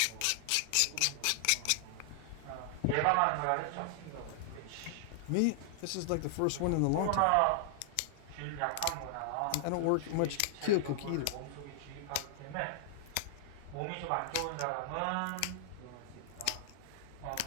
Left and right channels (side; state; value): both; different; correlation -0.01